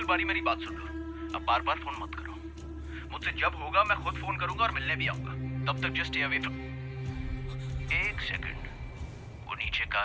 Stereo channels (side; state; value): both; identical; correlation 1.00